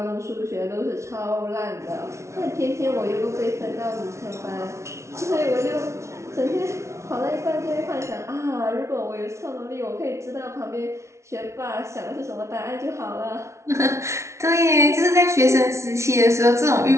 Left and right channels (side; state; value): left; late; 0.13 ms